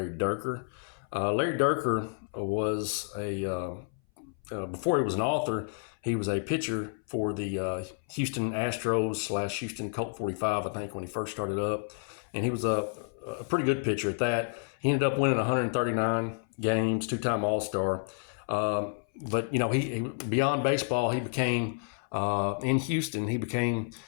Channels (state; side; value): silent; right; 58 dB below the other